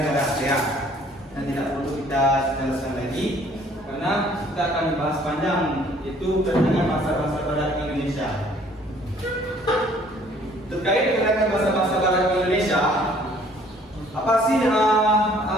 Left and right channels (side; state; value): both; normal; correlation 0.58